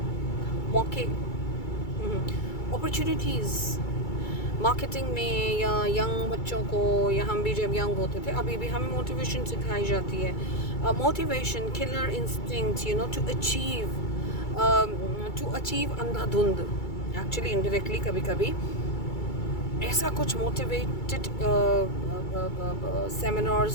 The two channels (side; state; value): right; late; 2.3 ms